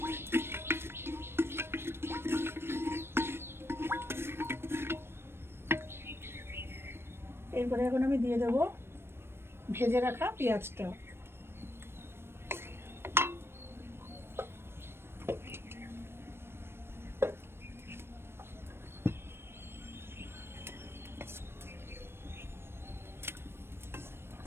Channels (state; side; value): late; left; 0.12 ms